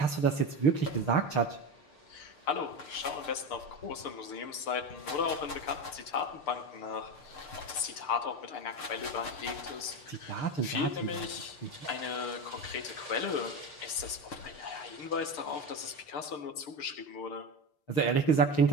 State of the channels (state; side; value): late; right; 6.7 ms